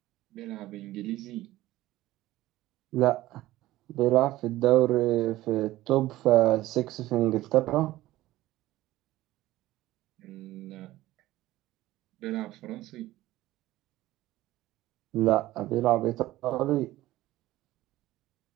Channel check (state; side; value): quieter; left; 16.3 dB